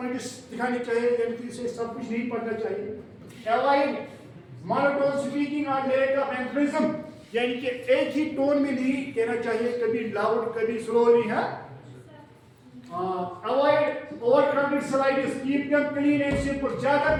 दिखाने चाहिए, यानी कि इसे सब कुछ नहीं पढ़ना चाहिए। अवॉइड मोनोटोन स्पीकिंग और लैक ऑफ एम्फेसिज्म, यानी कि एक ही टोन में नहीं कहना चाहिए, कभी लाउड कभी स्लोली है। Avoid over crowded slides, keep them clean and simple. ज्यादा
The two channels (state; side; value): identical; both; correlation 1.00